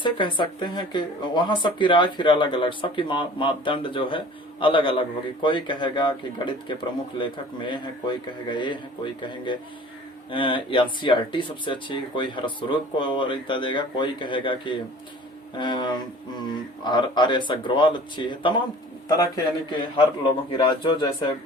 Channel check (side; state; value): both; normal; correlation 0.46